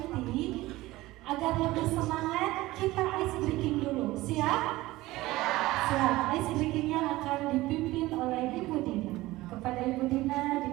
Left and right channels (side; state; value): left; quieter; 18.4 dB